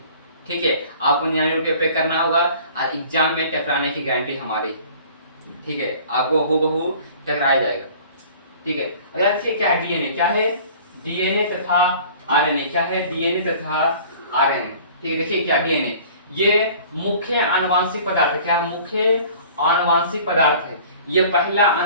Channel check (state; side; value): inverted; both; correlation -0.48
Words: ठीक है, आपको 99 रुपये पे करना होगा और एग्जाम में टकराने की गारंटी हमारी। ठीक है, आपको हूबहू टकराया जाएगा। ठीक है, अगला देखिए क्या है डीएनए। क्या है, डीएनए तथा आरएनए। क्या है, डीएनए तथा आरएनए। ठीक है, देखिए क्या डीएनए, ये मुख्य आनुवांशिक पदार्थ। क्या मुख्य आनुवांशिक पदार्थ है, ये पहला